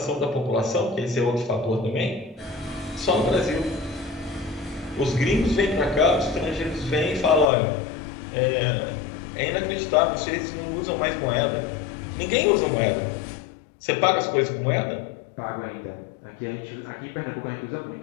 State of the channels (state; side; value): drops out; right; at 7.5 s